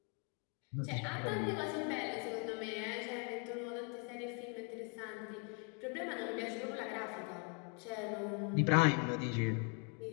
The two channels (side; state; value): right; quieter; 37.1 dB